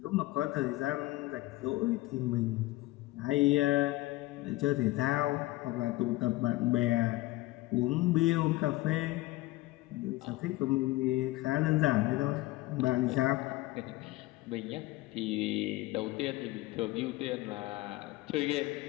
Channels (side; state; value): right; quieter; 19.1 dB